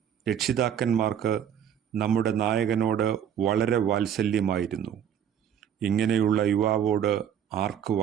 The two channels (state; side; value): quieter; left; 9.0 dB